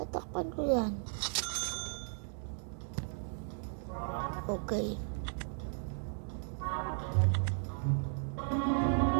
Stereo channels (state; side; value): silent; left; 54 dB below the other